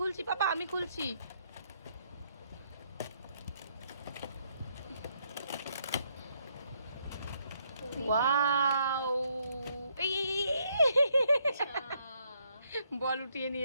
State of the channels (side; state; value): both; inverted; correlation -0.72